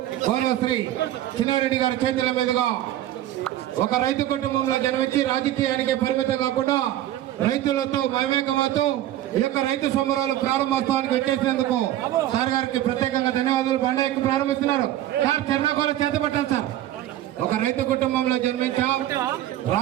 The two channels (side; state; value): left; quieter; 13.2 dB